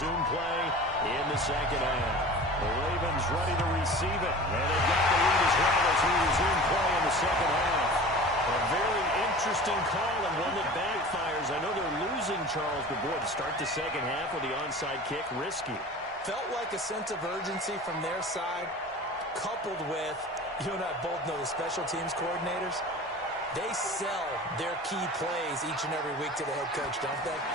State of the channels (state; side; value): normal; both; correlation 0.38